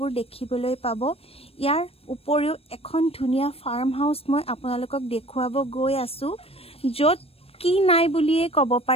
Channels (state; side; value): late; right; 0.28 ms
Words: দেখিবলৈ পাব। ইয়াৰ উপৰিও এখন ধুনীয়া ফাৰ্ম হাউস মই আপোনালোকক দেখুৱাব গৈ আছো, য'ত কি নাই বুলিয়ে ক'ব